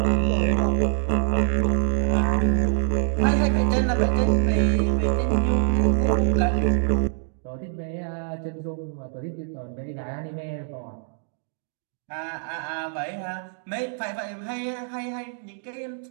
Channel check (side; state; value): left; silent; digital silence